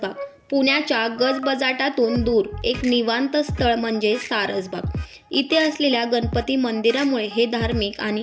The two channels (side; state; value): both; identical; correlation 1.00